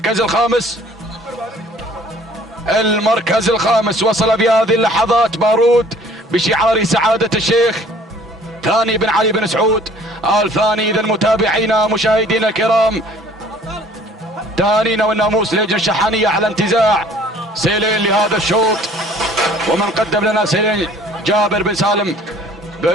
الخامس. المركز الخامس وصل في هذه اللحظات بارود بشعار سعادة الشيخ ثاني بن علي بن سعود الثاني. إذا متابعينا مشاهدينا الكرام، تهانينا والناموس للهجنة الشحانية على انتزاع سيلين لهذا الشوط. ومن قدم لنا سيلين جابر بن سالم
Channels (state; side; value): normal; both; correlation 0.54